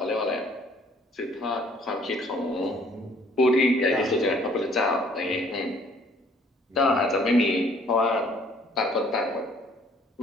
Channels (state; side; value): normal; both; correlation 0.59